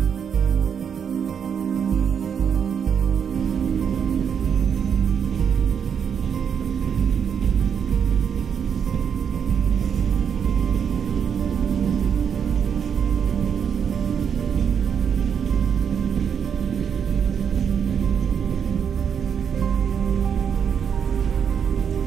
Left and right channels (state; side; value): quieter; left; 7.5 dB